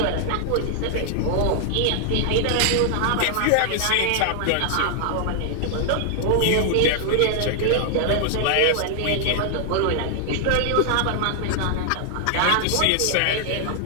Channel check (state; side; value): different; both; correlation 0.00